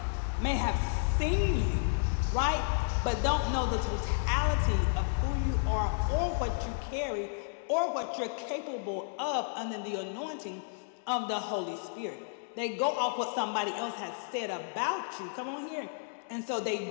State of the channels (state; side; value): silent; right; digital silence